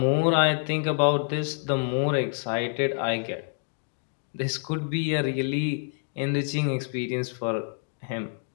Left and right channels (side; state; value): right; silent; 60 dB below the other